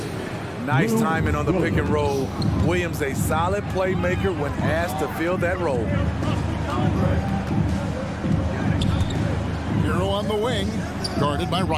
Nice timing on the pick and roll. Williams, a solid playmaker when asked to fill that role. Hero on the wing, guarded by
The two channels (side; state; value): both; identical; correlation 1.00